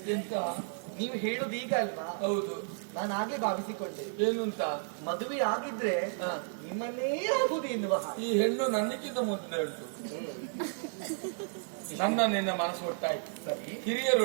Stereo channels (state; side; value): silent; left; 56 dB below the other